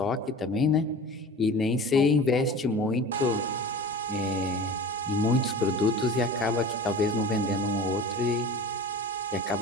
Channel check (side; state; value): both; normal; correlation 0.37